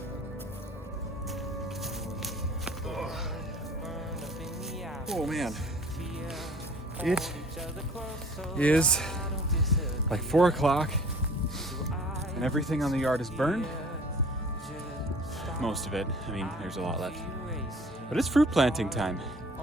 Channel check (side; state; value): both; normal; correlation 0.49